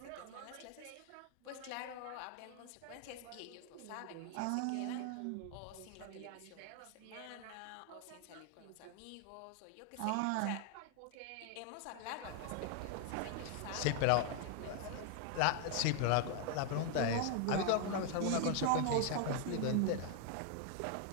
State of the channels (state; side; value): different; both; correlation 0.00